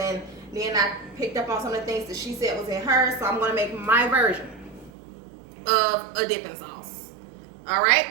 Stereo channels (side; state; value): left; drops out; at 4.9 s